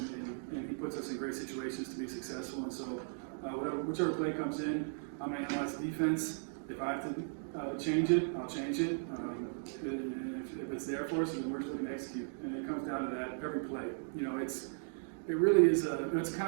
he puts us in great situations to be successful. And so, whichever play comes in, I'm going to analyze the defense. If I have to change it, I'll change it. If it's there for us, then we're just going to execute. And it comes down to that every play. It really is it's a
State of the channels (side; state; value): left; silent; digital silence